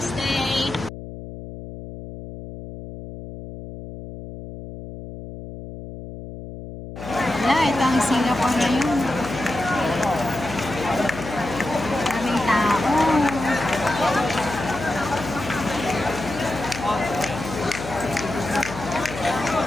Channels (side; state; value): left; noise; hum, 11 dB below the sound